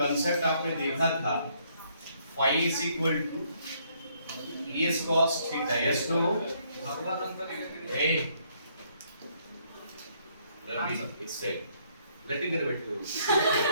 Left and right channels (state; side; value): inverted; both; correlation -0.69